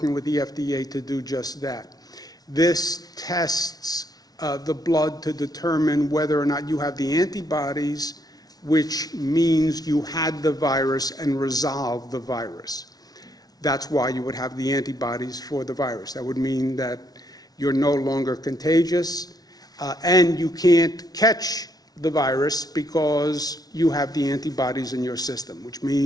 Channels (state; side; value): late; right; 0.19 ms